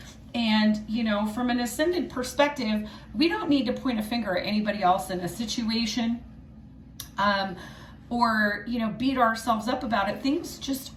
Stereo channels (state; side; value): identical; both; correlation 1.00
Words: And, you know, from an ascended perspective, we don't need to point a finger at anybody else in a situation, or, you know, beat ourselves up about it. Things just